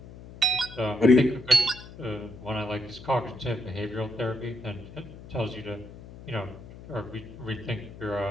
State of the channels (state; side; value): noise; left; hum, 16 dB below the sound